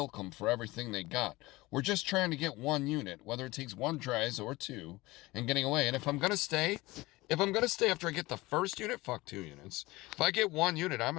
them for everything they got. We're just trying to get one unit, whether it takes 1 tries or 2, and getting away. And if I'm going to stay after I get the first unit, fuck 2 units. If I get 1 unit, I'm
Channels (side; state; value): right; quieter; 20.6 dB